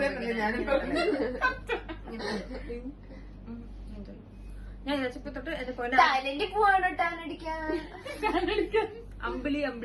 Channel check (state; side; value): identical; both; correlation 1.00